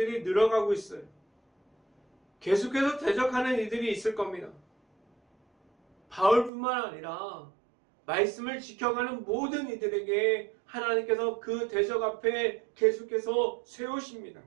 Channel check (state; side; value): drops out; left; at 6.5 s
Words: 늘어가고 있어요. 계속해서 대적하는 이들이 있을 겁니다. 바울뿐만 아니라 말씀을 지켜가는 모든 이들에게 하나님께서 그 대적 앞에 계속해서 세우십니다.